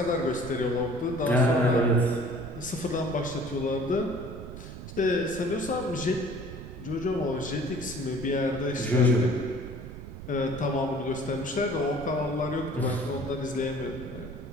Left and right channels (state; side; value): noise; right; rumble, 11 dB below the sound